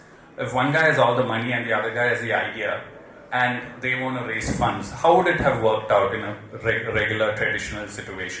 if one guy has all the money and the other guy has the idea, and they want to raise funds, how would it have worked out in a regular traditional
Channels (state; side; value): identical; both; correlation 1.00